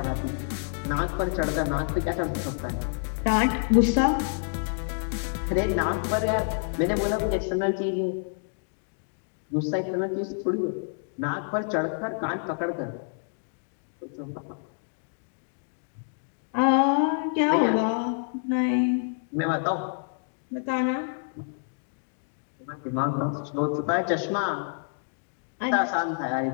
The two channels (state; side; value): silent; right; digital silence